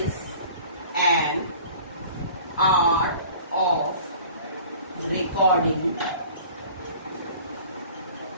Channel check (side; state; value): both; inverted; correlation -0.46